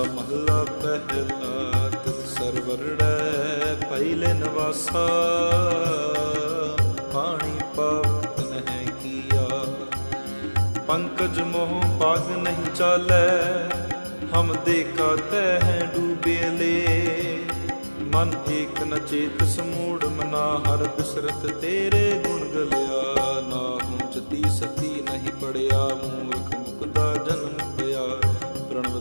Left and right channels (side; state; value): both; inverted; correlation -1.00